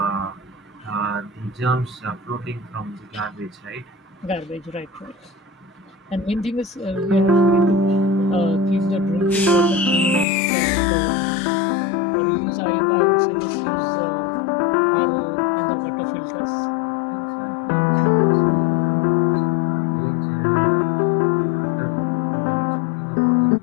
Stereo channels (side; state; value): right; drops out; at 10.2 s